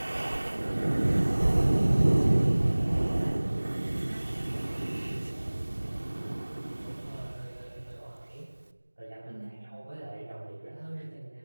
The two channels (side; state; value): both; inverted; correlation -1.00